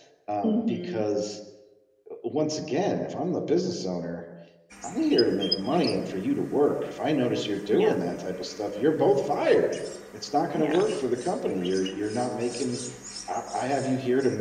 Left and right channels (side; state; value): both; identical; correlation 1.00